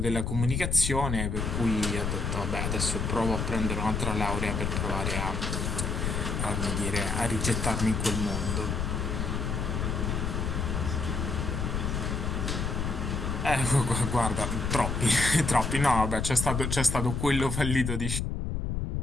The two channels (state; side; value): noise; left; rumble, 1 dB below the sound